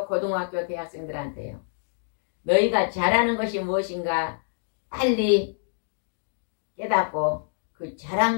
고등학교, 대학생들한테요, 너희가 잘하는 것이 무엇인가 빨리 깨닫고 그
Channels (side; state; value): right; silent; digital silence